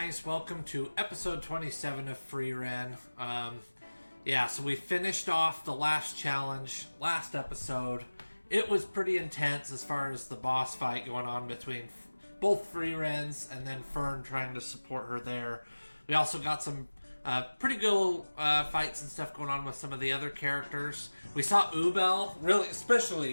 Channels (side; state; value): both; inverted; correlation -1.00